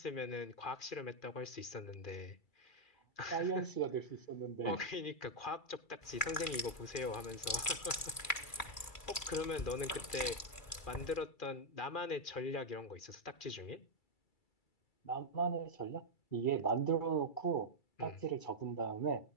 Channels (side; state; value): right; late; 2.3 ms